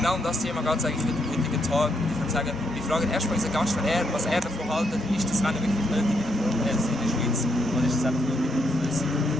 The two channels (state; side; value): normal; both; correlation 0.77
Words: um das Thema geht es eigentlich heute am heutigen Tag. Ich würde sagen, wir fragen erstmal unseren Gast, was er davon hält. Ist das Rennen wirklich nötig in der Formel 1 in der Schweiz oder ist es einfach nur überflüssig?